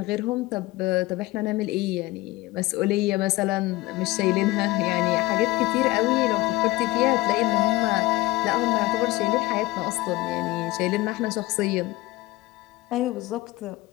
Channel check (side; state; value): right; quieter; 19.3 dB